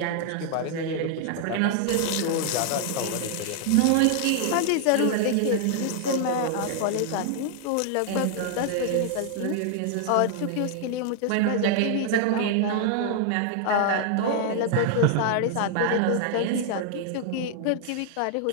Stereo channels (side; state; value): both; different; correlation 0.00